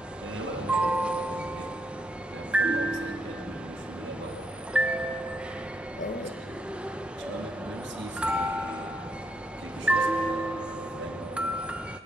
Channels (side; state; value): both; normal; correlation 0.76